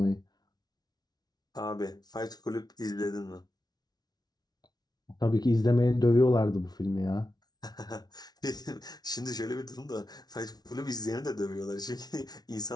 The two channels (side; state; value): right; late; 0.19 ms